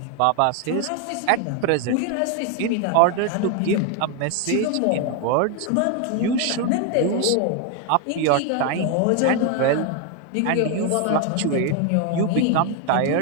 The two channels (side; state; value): both; different; correlation 0.01